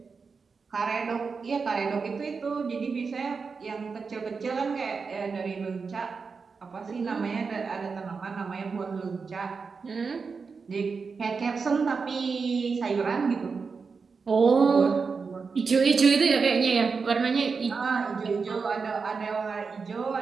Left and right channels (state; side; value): quieter; left; 5.0 dB